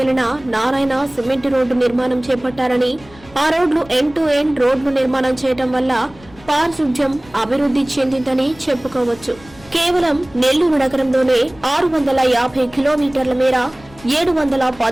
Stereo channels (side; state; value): left; noise; rumble, 23 dB below the sound